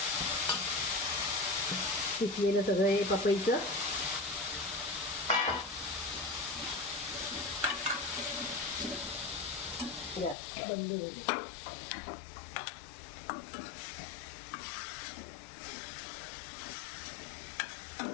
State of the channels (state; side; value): drops out; right; at 10.4 s